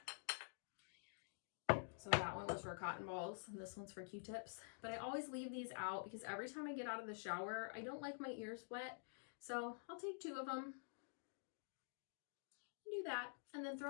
So that one was for cotton balls, and this one's for Q-tips. But I always leave these out because every time I get out of the shower, I don't like my ears wet. So I'll take 2 of them, do that, and then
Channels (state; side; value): silent; right; digital silence